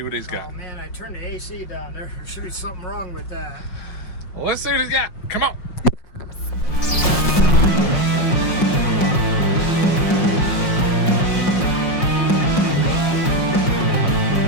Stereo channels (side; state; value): right; late; 5.6 ms